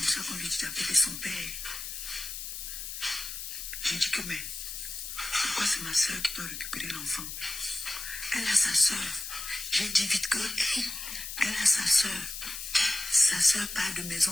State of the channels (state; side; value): noise; left; hiss, 7 dB below the sound